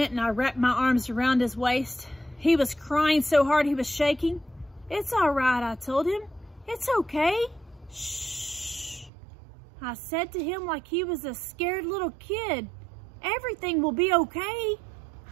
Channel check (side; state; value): left; drops out; at 9.1 s